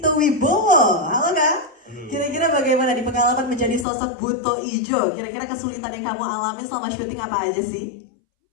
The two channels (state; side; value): drops out; right; at 3.9 s